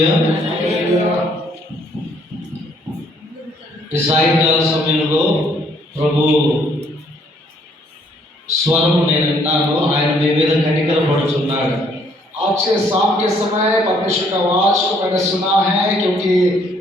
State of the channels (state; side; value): normal; both; correlation 0.65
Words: ఈ సాయంకాల సమయంలో ప్రభు స్వరం నేను విన్నాను. ఆయన మీ మీద కనికరపడుచున్నాడు. आज के शाम के समय परमेश्वर का आवाज को मैंने सुना है, क्योंकि